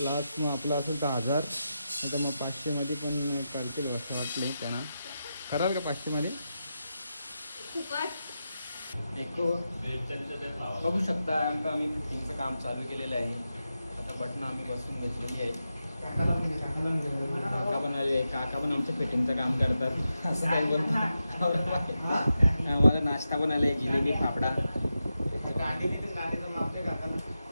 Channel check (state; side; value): inverted; both; correlation -0.89